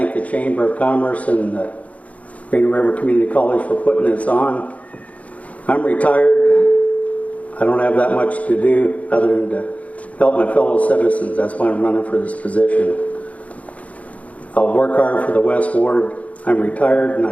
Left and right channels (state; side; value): late; right; 0.068 ms